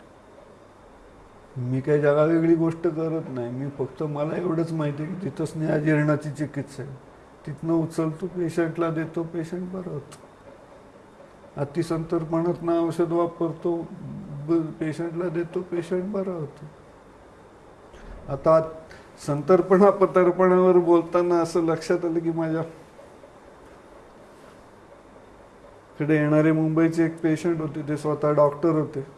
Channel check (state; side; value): identical; both; correlation 1.00